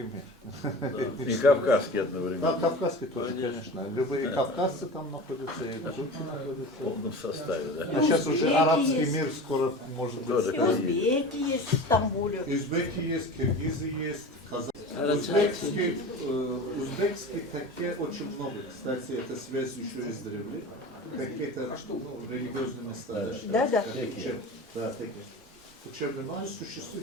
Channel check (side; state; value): both; normal; correlation 0.34